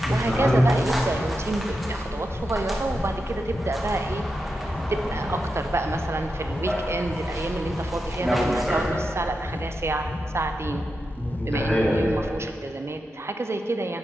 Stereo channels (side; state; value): both; normal; correlation 0.88